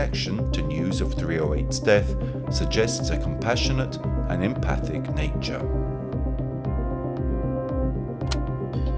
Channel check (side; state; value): both; identical; correlation 1.00